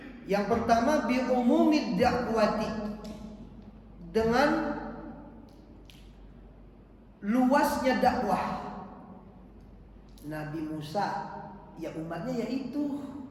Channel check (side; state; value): both; identical; correlation 1.00